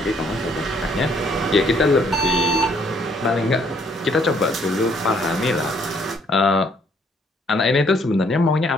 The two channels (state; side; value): normal; both; correlation 0.66